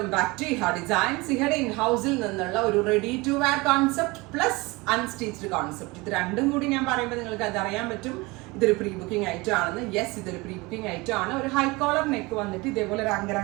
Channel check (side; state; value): left; quieter; 23.8 dB